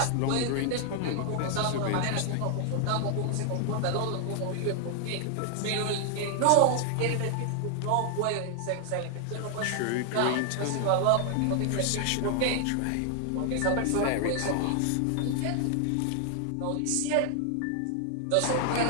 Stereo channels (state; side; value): different; both; correlation 0.00